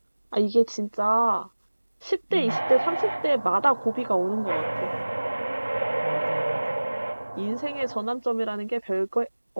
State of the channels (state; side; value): inverted; both; correlation -1.00